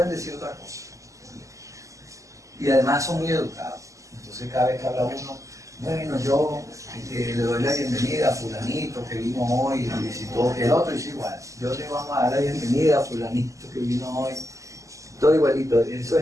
decir otra cosa. Y además son muy educados. Entonces cada vez que habla uno, bueno, yo le doy la bienvenida a fulanito que vino hoy y visitó, el otro dice igual, yo le vamos a dar la bienvenida a fulanito que vino hoy, todo igualito, eso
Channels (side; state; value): left; late; 0.16 ms